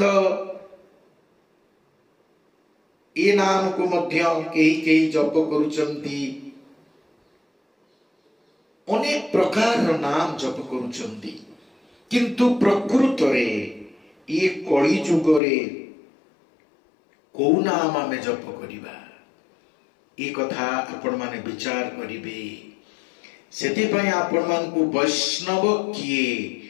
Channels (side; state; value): right; drops out; at 15.4 s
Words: ए नाम को मध्य कई जप करुचंती। अनेक प्रकार नाम जप करुचंती। किंतु प्रकृत रे ये कलि जुग रे को नाम आमे जप करिबा ए कथा आपण माने विचार करिबे। सेति पय आपण मान को वैष्णव किए